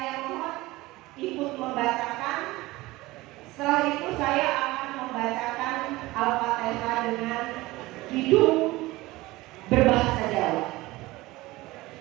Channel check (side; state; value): left; quieter; 19.7 dB